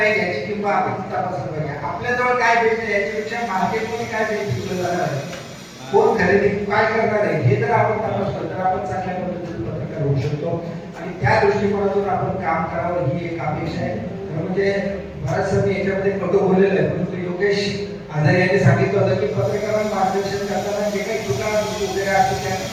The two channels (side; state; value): both; identical; correlation 1.00